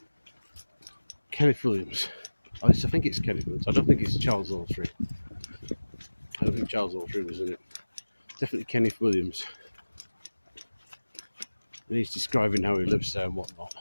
Kenneth Williams. At least I think it's Kenneth Williams. I don't think it's Charles Autry. I don't think Charles Autry was in it. Definitely Kenneth Williams. And he's describing how he lives there and whatnot.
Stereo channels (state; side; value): inverted; both; correlation -1.00